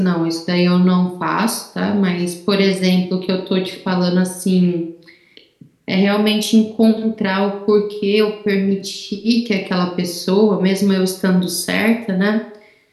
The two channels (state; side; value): identical; both; correlation 1.00